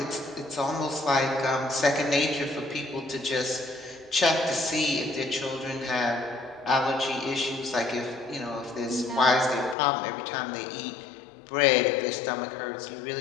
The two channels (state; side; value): drops out; right; at 9.8 s